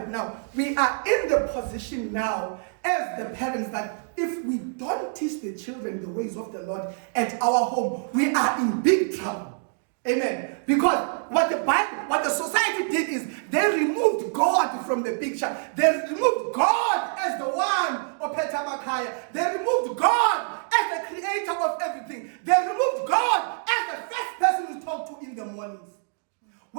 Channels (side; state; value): left; silent; 61 dB below the other